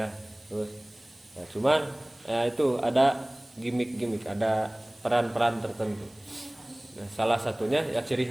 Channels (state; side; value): noise; right; hiss, 27 dB below the sound